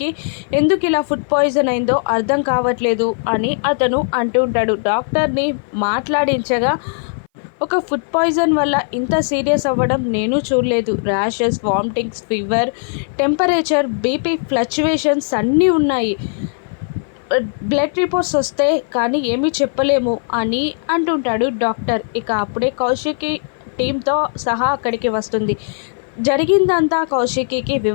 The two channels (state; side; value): silent; right; 59 dB below the other